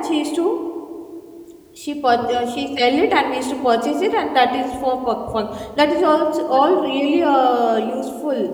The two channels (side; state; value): both; identical; correlation 1.00